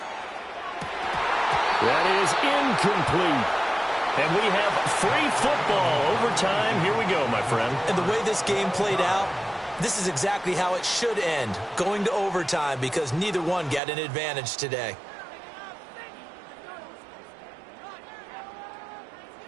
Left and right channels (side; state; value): left; drops out; at 13.8 s